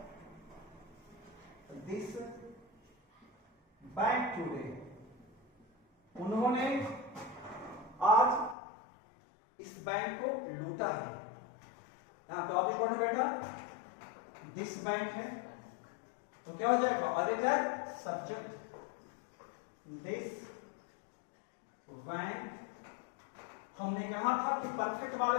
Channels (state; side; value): drops out; right; at 8.6 s